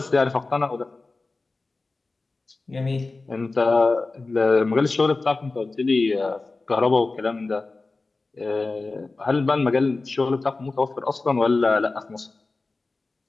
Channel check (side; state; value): right; quieter; 3.6 dB